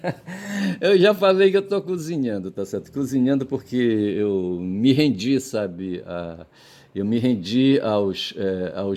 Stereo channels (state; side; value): identical; both; correlation 1.00